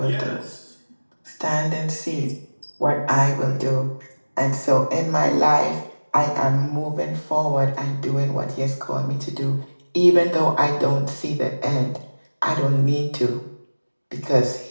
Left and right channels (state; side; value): inverted; both; correlation -1.00